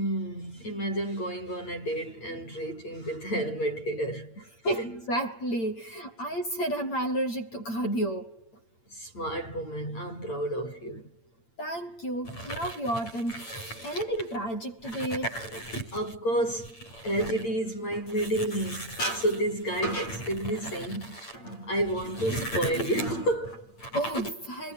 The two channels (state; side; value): late; right; 8.8 ms